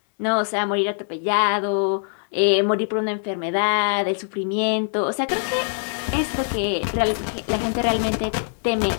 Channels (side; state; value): right; silent; digital silence